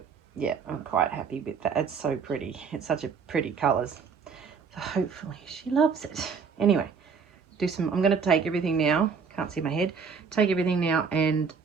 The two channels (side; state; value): left; quieter; 5.8 dB